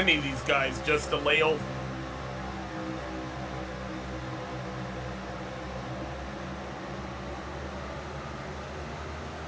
of these guys just to lay over.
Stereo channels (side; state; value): both; identical; correlation 1.00